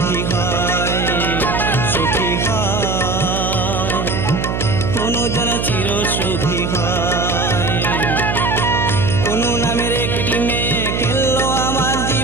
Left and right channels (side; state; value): right; noise; hum, 2 dB below the sound